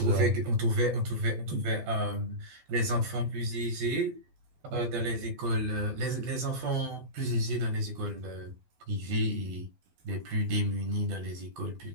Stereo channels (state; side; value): late; left; 12 ms